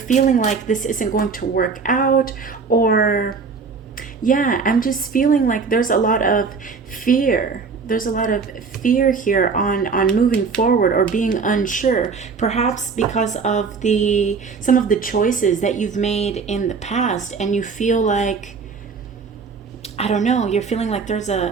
like this isn't going to work out, or yeah, I'm just feeling like there's a lot of fear. There's a lot of fear here on moving forward or being unsure, perhaps because of some of the choices that you've made in the past, and you feel like, I don't know, you're feeling like there's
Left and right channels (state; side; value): quieter; left; 5.1 dB